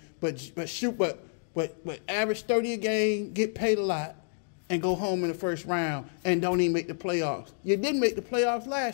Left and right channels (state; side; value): silent; right; digital silence